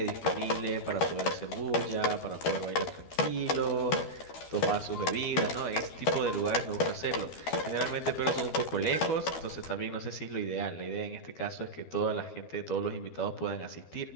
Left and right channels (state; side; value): late; right; 12 ms